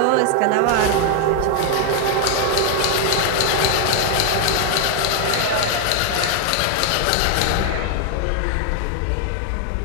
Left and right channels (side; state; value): both; different; correlation 0.00